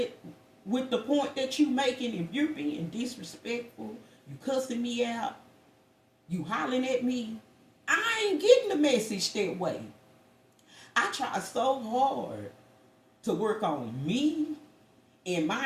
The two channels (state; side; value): identical; both; correlation 1.00